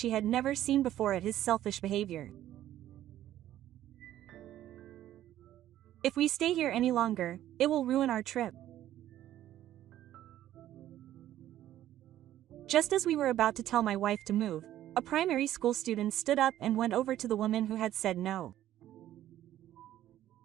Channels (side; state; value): left; quieter; 12.8 dB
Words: had never seen before at his selfish behavior. If we stay here any longer, it will ruin our trip. Just as we were about to tell my wife to move, a primary school student stood up and went over to the woman who had said no.